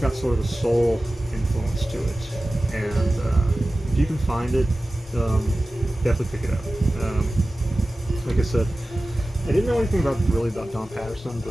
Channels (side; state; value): both; normal; correlation 0.96